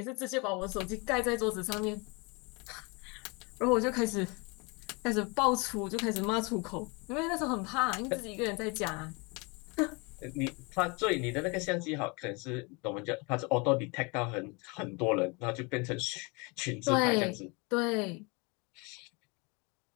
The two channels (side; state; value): right; quieter; 29.3 dB